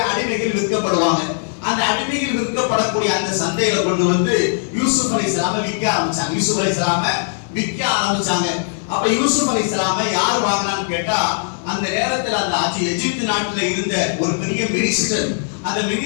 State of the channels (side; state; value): right; silent; 66 dB below the other